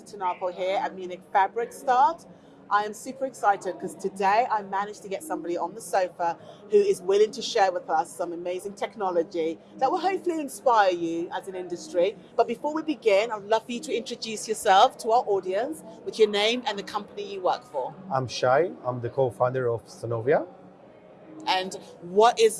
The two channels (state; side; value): identical; both; correlation 1.00